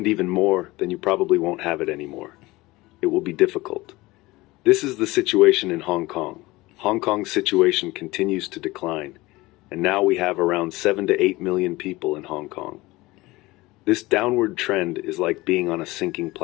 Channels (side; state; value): right; quieter; 20.5 dB